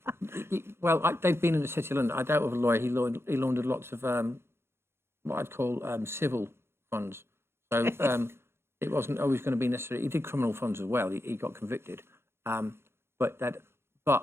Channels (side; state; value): left; late; 0.12 ms